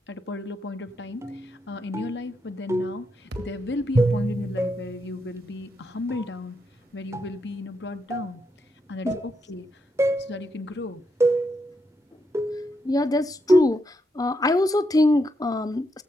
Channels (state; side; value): normal; both; correlation 0.81